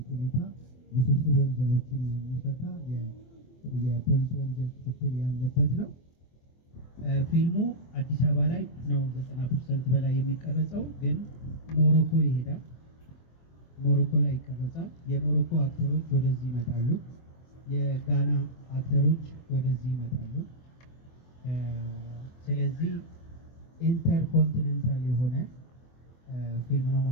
ሁኔታ ውስብስብ ወንጀሎችን የሚፈታ የፖሊስ ወንጀል ክትትል ያለበት ነው። ፊልሙ አዲስ አበባ ላይ ነው 90% በላይ የሚቀረጸው፣ ግን ሞሮኮ ይሄዳል። ሞሮኮ ላይ ይቀረጻል። የሞሮኮ አክተሮች ወደዚህ ይመጣሉ። የጋና አክተሮች ወደዚህ ይመጣሉ። ስለዚህ ኢንተርኮንቲኔንታል የሆነ ፊልም ነው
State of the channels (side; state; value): right; late; 24 ms